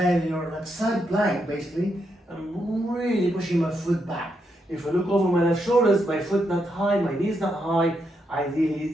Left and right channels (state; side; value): normal; both; correlation 0.81